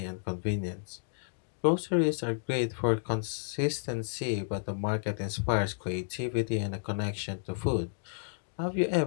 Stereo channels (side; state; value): right; silent; digital silence